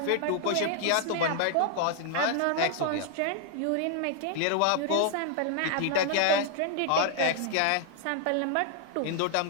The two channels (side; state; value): both; different; correlation 0.00